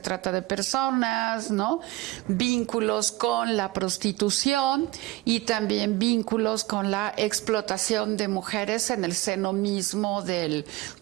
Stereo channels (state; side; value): quieter; left; 19.2 dB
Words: trata de personas, ¿no? Vínculos con la prostitución y también vínculos con la explotación de mujeres en el seno mismo de